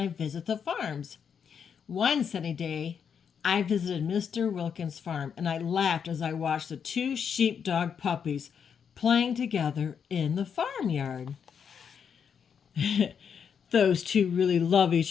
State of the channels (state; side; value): quieter; right; 7.2 dB